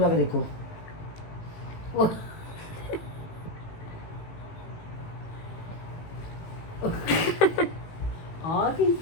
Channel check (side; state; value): right; late; 18 ms